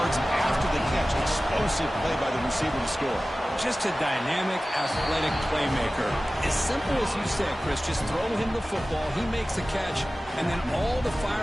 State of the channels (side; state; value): both; normal; correlation 0.96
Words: after the catch. Explosive play by the receiver to score. Just a dynamic, athletic playmaker. As simple as you said, Chris, just throw him the football, he makes a catch, and then all the